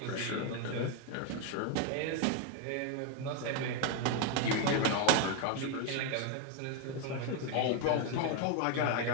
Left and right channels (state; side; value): different; both; correlation 0.01